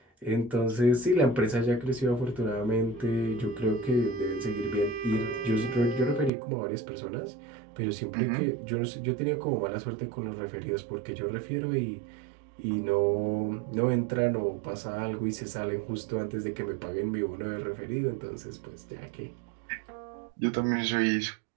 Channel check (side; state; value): left; drops out; at 6.3 s